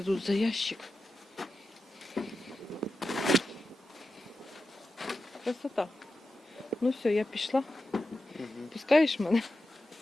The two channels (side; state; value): both; normal; correlation 0.90